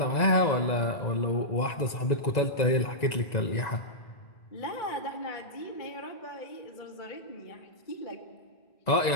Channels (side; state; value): right; late; 1.9 ms